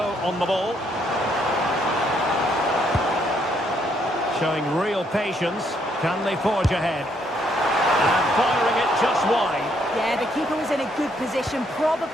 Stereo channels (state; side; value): normal; both; correlation 0.71